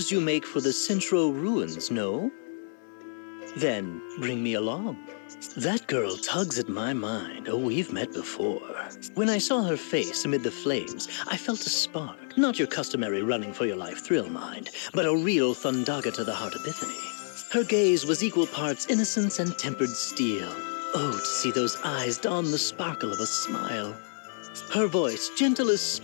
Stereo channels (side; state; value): right; silent; digital silence